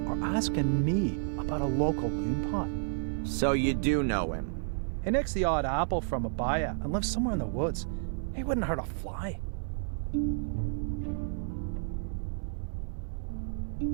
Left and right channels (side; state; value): left; silent; digital silence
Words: are asking me about a local loon pot? So you do know him? He nicks the odd apple from a buyer and lives somewhere in the woods. He wouldn't hurt a fly.